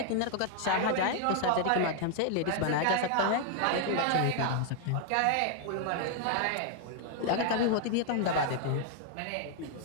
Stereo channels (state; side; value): different; both; correlation 0.00